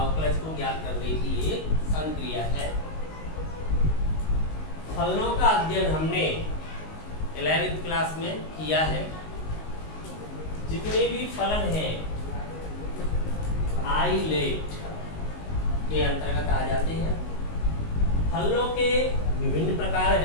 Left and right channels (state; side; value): late; right; 19 ms